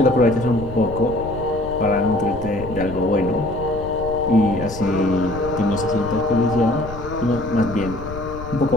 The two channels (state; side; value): noise; left; rumble, 11 dB below the sound